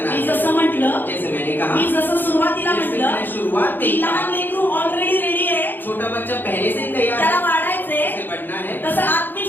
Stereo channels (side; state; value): right; late; 0.092 ms